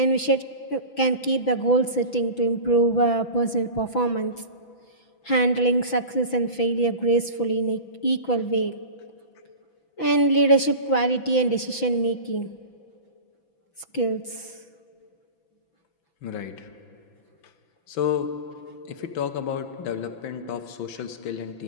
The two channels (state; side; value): late; right; 6.0 ms